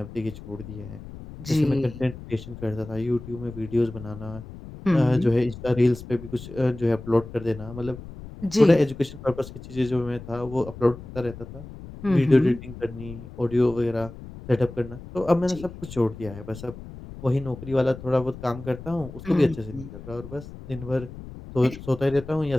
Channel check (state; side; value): noise; left; rumble, 14 dB below the sound